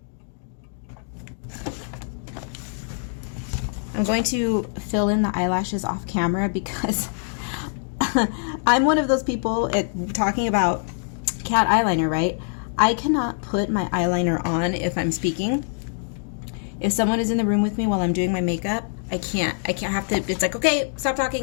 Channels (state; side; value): silent; right; digital silence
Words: I'm going to fill in the eyelashes off camera because I'm one of those people talking about cat eyeliner, right? I cannot put my eyeliner on if I'm speaking. If someone is in the room with me while I'm doing my makeup, I can't have to, it's like, okay, stop